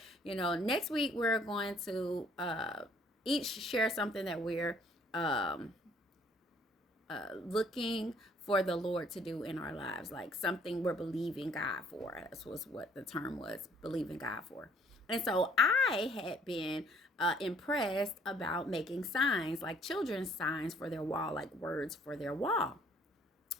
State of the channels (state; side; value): normal; both; correlation 0.61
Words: next week we're going to each share something that we're looking for the Lord to do in our lives, like something we're believing God for. That was what the term was, believing God for. And so I had been impressed about making signs, like children's signs for their wall, like words for their wall.